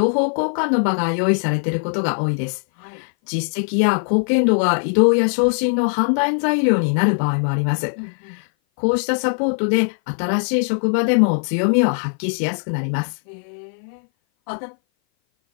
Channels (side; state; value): right; silent; 58 dB below the other